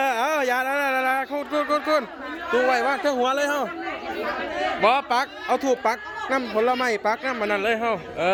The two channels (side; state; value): both; identical; correlation 1.00